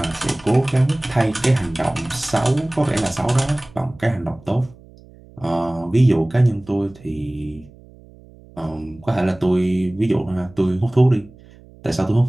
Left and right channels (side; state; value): right; noise; hum, 24 dB below the sound